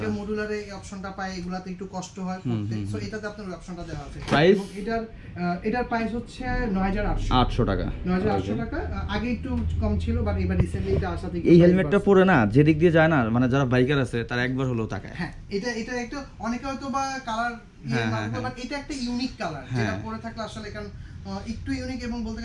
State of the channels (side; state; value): both; identical; correlation 1.00